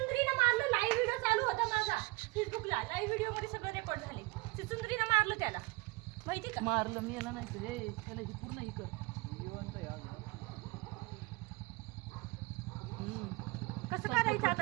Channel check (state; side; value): quieter; left; 23.2 dB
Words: मारलं. लाईव्ह व्हिडिओ चालू होता माझा फेसबुकला. लाईव्ह व्हिडिओ मध्ये सगळं रेकॉर्ड झाले. चिचुंद्रीनं मारलं त्याला, माहिती का? मारलं मी याला नाही तर हे त्याला ही पूर्ण ही कर. कसं करायचं